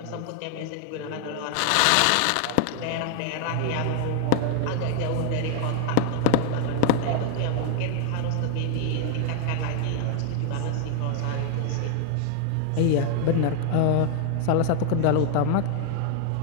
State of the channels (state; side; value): different; both; correlation 0.00